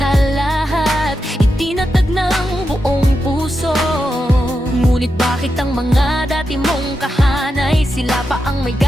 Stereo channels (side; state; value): both; normal; correlation 0.87